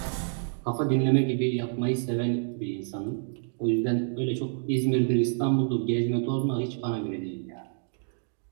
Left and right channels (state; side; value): silent; left; digital silence